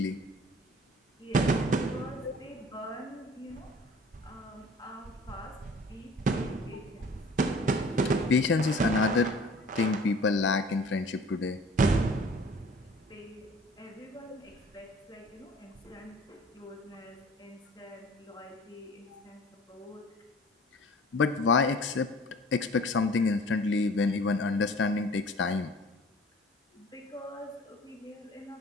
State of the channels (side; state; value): both; normal; correlation 0.48